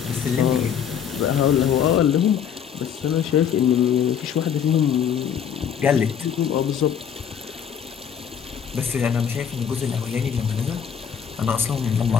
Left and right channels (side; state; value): right; quieter; 8.2 dB